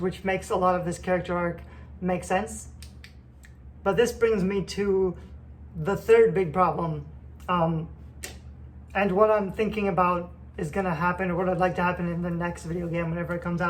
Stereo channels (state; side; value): identical; both; correlation 1.00